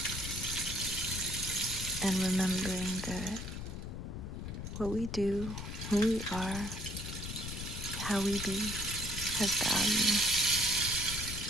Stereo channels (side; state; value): left; noise; rumble, 7 dB below the sound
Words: and remembering that what we do, who we are, how we be, has value.